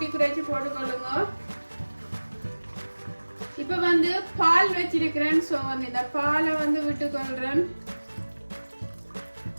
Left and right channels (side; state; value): both; inverted; correlation -1.00